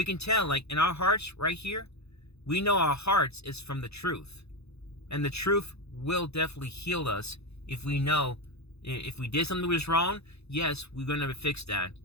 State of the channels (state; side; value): late; right; 0.79 ms